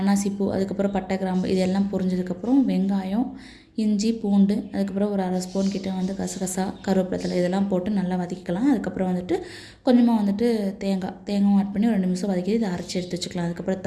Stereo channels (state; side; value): identical; both; correlation 1.00